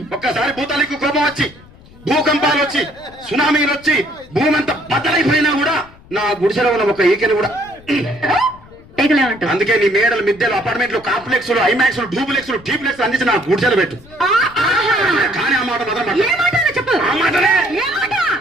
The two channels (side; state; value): left; noise; rumble, 23 dB below the sound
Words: ఒక్కసారి భూతాలకు కోపం వచ్చి భూకంపాలు వచ్చి సునామీలు వచ్చి భూమి అంతా బద్దలైపోయినా కూడా నా గుడిసెలో ఉన్న ఒక ఈకెని కూడా అందుకే నీ మేడలు మిద్దెలు అపార్ట్మెంట్లు కాంప్లెక్స్ ఐమాక్స్ డూప్లెక్స్ టీప్లెక్స్ అందించి నా గుడిసెలు పెట్టు. కానీ ఆ మాట మాత్రం చెప్పు. ఆ మాటనే